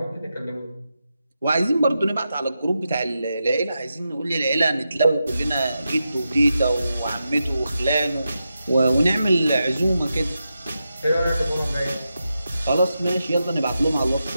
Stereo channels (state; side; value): inverted; both; correlation -0.88